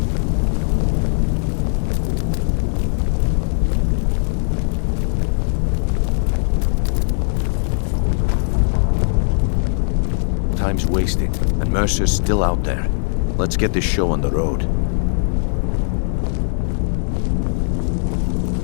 Time's wasting, and Mercer's still out there. Let's get this show on the road.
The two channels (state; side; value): silent; right; 66 dB below the other